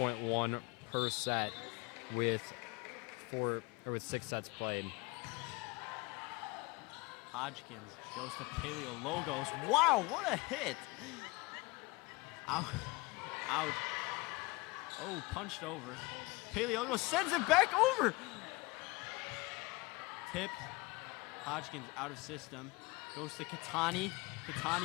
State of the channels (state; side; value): quieter; right; 24.1 dB